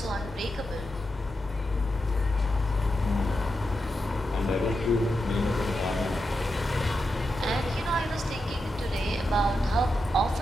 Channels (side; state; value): both; normal; correlation 0.87